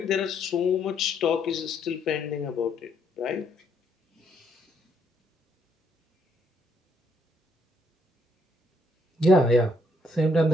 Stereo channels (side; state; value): both; normal; correlation 0.71